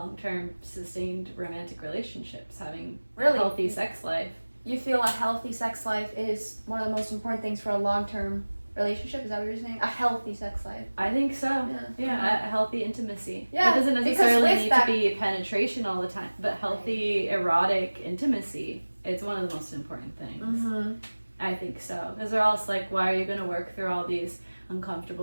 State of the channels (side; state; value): both; inverted; correlation -1.00